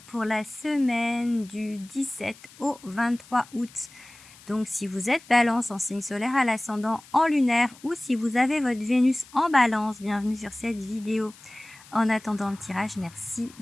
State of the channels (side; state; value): left; noise; hiss, 23 dB below the sound